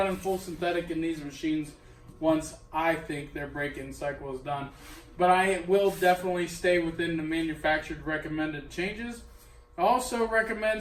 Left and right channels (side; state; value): both; identical; correlation 1.00